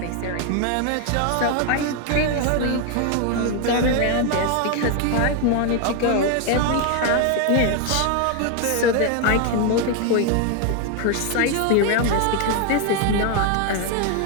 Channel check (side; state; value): both; different; correlation 0.01